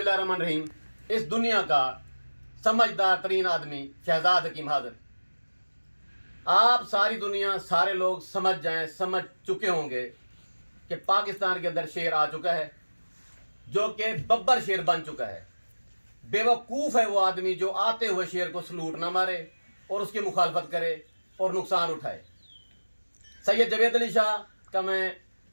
इस दुनिया का समझदार तरीन आदमी शहजाद हकीम हाजिर। आप सारी दुनिया, सारे लोग समझ चुके होंगे कि पाकिस्तान के अंदर शेर आ चुका है, जो कि बब्बर शेर बन चुका है। बेवकूफ़ है वो आदमी जो आते हुए शेर को सलूट ना मारे और उसकी मुखालफत करे और नुकसान उठाए। सैयद जवेद अली शाह का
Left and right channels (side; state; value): both; inverted; correlation -1.00